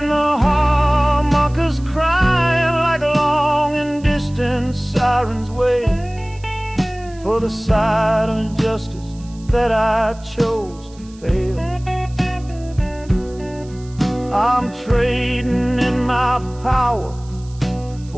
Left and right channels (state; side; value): noise; right; hiss, 25 dB below the sound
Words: the harmonicas crying like long and distant sirens wait for the side of justice that I chose to fail. I'm trading in my power